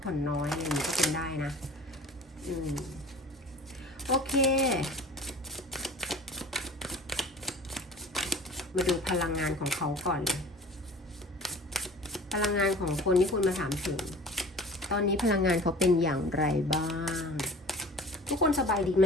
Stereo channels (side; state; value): both; normal; correlation 0.43